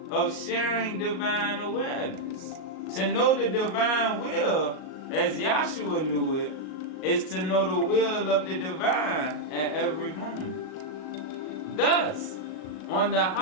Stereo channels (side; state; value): right; late; 38 ms